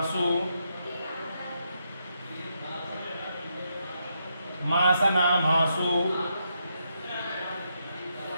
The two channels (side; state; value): both; inverted; correlation -0.80